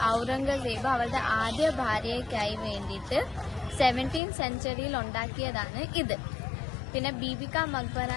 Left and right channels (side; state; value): right; drops out; at 4.2 s